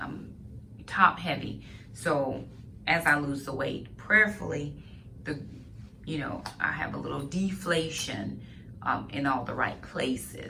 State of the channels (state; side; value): identical; both; correlation 1.00